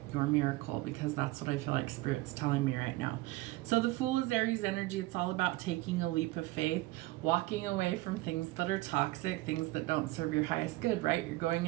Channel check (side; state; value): left; quieter; 19.3 dB